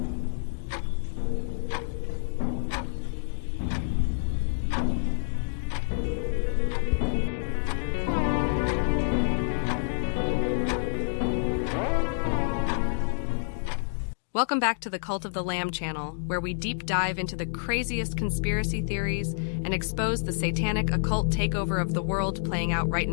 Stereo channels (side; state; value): right; silent; digital silence